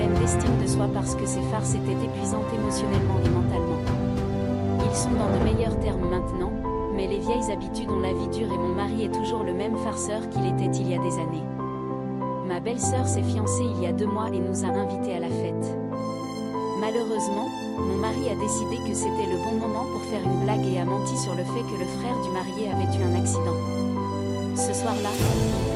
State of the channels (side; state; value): both; identical; correlation 1.00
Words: d'estime de soi parce que ses farces étaient épuisantes émotionnellement et mentalement. Ils sont dans de meilleurs termes maintenant, mais les vieilles habitudes ont la vie dure et mon mari est toujours le même farceur qu'il était il y a des années. Ma belle-sœur s'est fiancée il y a 2 mois et nous a invités à la fête. Malheureusement, mon mari a décidé que c'était le bon moment pour faire une blague et a menti sur le fait que le frère du marié avait eu un accident. Ce soir-là, il